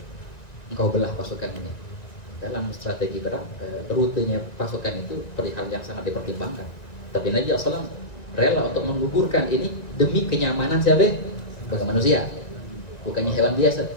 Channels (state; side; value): late; right; 1.9 ms